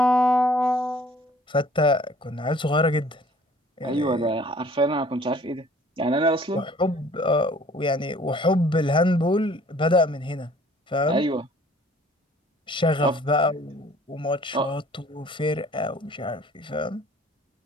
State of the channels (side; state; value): both; normal; correlation 0.54